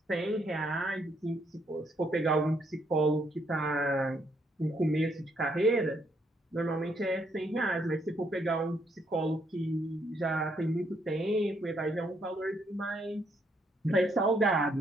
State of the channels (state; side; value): normal; both; correlation 0.73